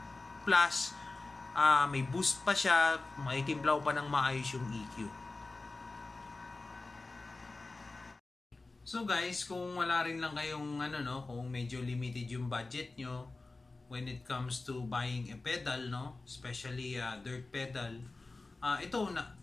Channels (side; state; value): right; quieter; 3.4 dB